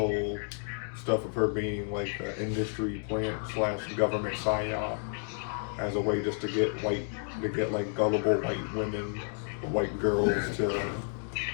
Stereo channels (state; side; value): silent; right; 57 dB below the other